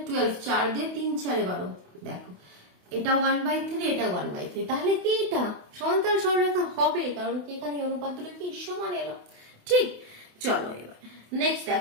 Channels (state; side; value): late; left; 28 ms